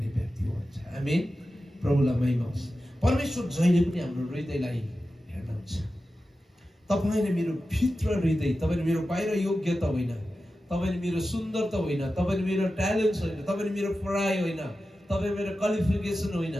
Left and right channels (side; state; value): both; normal; correlation 0.93